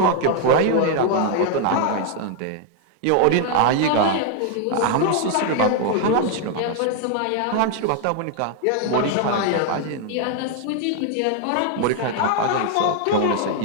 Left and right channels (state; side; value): different; both; correlation 0.00